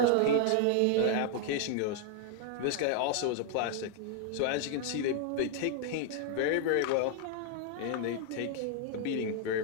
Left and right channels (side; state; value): both; different; correlation 0.00